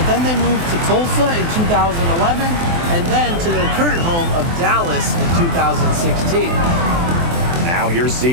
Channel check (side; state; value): left; late; 24 ms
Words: then they moved to Tulsa in 2011, and then to their current home of Dallas in 2016. Now here's